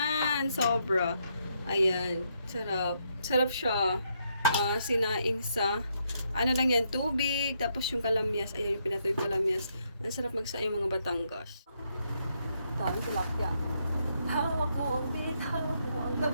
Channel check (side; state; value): both; inverted; correlation -0.76